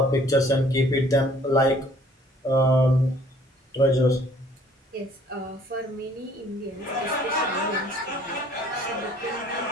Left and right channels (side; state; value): both; normal; correlation 0.57